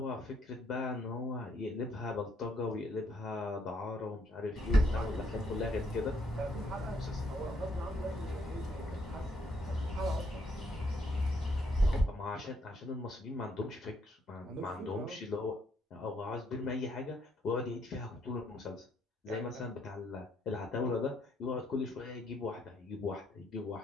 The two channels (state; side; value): normal; both; correlation 0.72